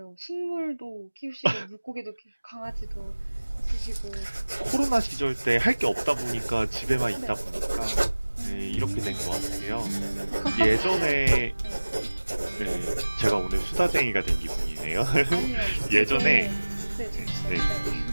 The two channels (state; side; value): inverted; both; correlation -1.00